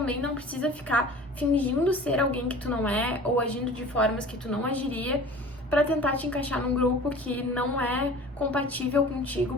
não precisa ficar fingindo ser alguém que tu não é ou agindo de formas que tu não agiria para tentar te encaixar num grupo que não é compatível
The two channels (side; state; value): both; normal; correlation 0.42